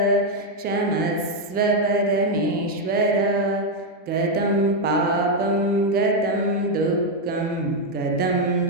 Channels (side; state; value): both; normal; correlation 0.02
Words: ಕ್ಷಮಸ್ವ ಪರಮೇಶ್ವರ. ಗತಂ ಪಾಪಂ ಗತಂ ದುಃಖಂ ಗತಂ